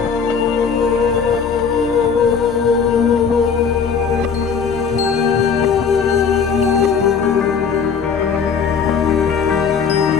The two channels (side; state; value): right; quieter; 6.3 dB